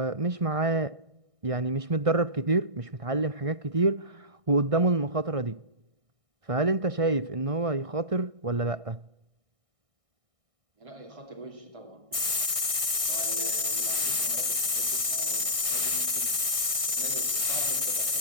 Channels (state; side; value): late; left; 1.6 ms